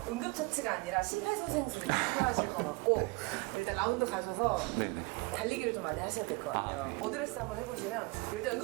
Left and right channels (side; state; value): left; quieter; 26.0 dB